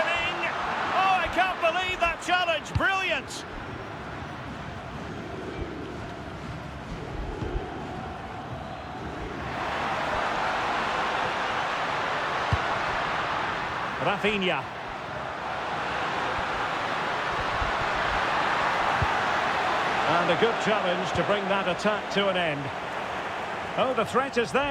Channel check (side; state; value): both; identical; correlation 1.00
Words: Oh, I can't believe that challenge. Brilliant. Rafinha. And a good challenge to bring that attack to an end. Oh, the threat is